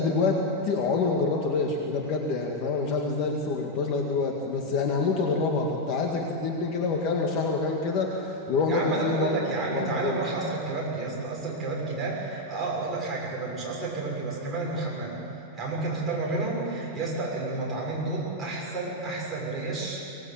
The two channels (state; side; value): normal; both; correlation 0.01